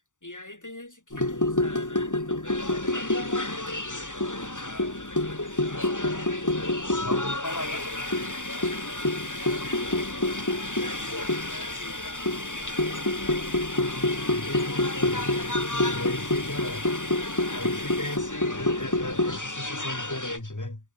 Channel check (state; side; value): late; right; 0.86 ms